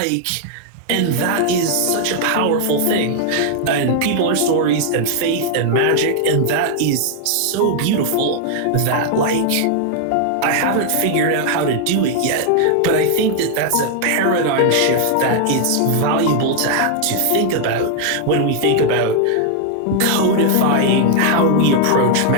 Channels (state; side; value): different; both; correlation 0.00